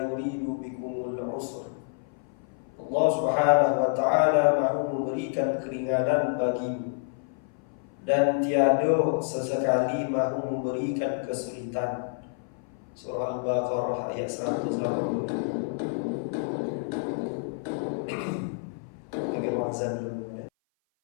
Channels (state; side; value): silent; right; 57 dB below the other